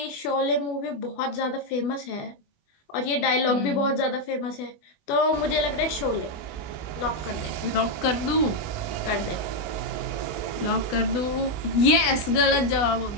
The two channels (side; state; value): right; late; 20 ms